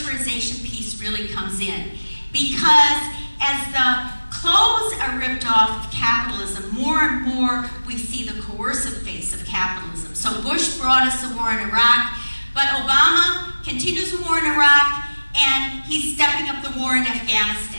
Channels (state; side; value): inverted; both; correlation -1.00